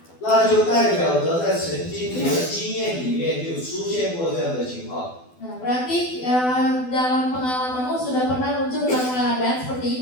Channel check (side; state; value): right; late; 12 ms